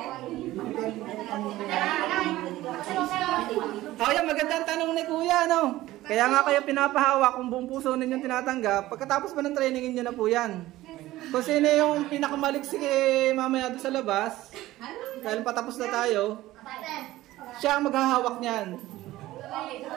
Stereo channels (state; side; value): quieter; left; 16.4 dB